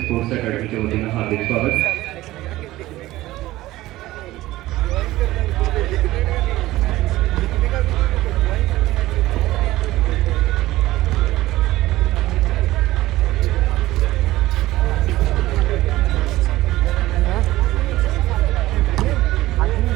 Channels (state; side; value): quieter; left; 16.8 dB